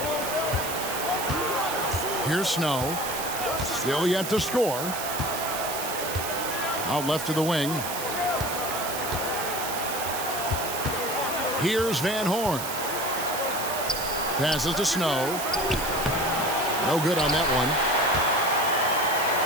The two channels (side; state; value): right; noise; hiss, 6 dB below the sound